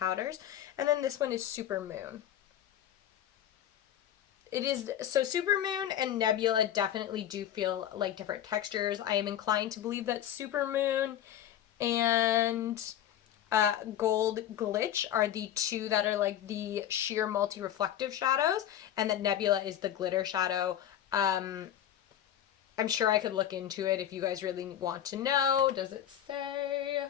And then this one is Supermoon. It is, so Supermoon and Nebula definitely do feel like different textures. I am inclined to believe that Supermoon and Gold Glitch are the two that are like the sheer multi-reflective shadows, and that Nebula is the glitter shadow. I'm sure I could look into it if you guys really want to know. Does it say?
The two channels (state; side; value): quieter; right; 11.0 dB